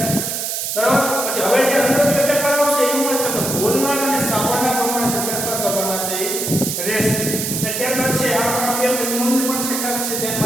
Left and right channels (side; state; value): right; noise; hiss, 2 dB below the sound